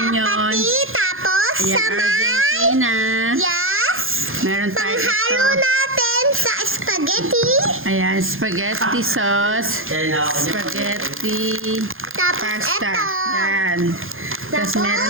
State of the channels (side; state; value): left; late; 0.60 ms